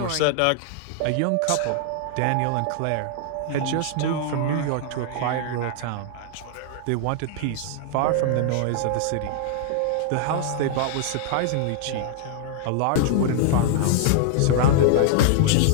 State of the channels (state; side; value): different; both; correlation 0.00